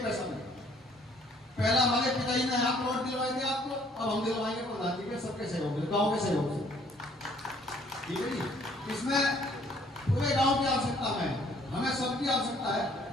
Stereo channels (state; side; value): normal; both; correlation 0.61